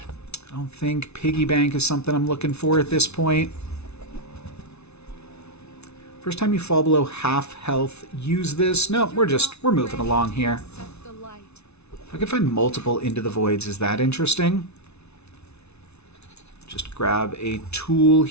I don't think piggy bank is something I'm looking for at this point. First time you fall below half health, use this. No, we're moving along here. If I could find multiple Into the Voids, is that interesting? Just grab a tool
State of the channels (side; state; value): right; late; 0.81 ms